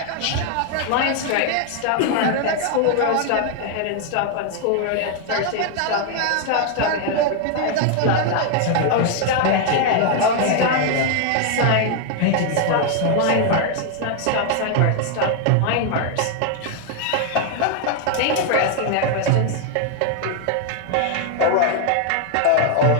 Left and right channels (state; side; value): different; both; correlation 0.00